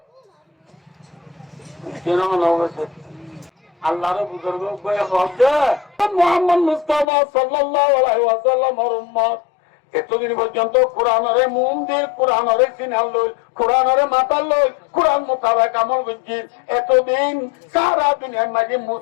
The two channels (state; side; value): drops out; right; at 7.1 s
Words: আল্লাহর বুজুর্গ মুহাম্মদ মুস্তাফা সাল্লাল্লাহু আলাইহি ওয়াসাল্লামের উম্মত এতদিন পর্যন্ত কোরআনরে মুম দিয়ে কোরআনরে সিনাল লই কোরআনরে মাথা লই কোরআন মোতাবেক আমল করছি এতদিন সারা দুনিয়ার মাঝে